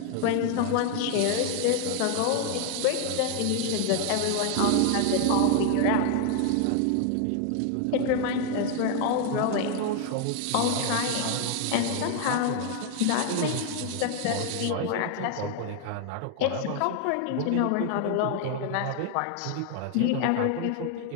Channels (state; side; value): different; both; correlation 0.00